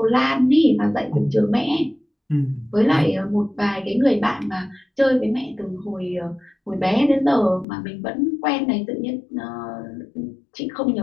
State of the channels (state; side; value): drops out; right; at 7.7 s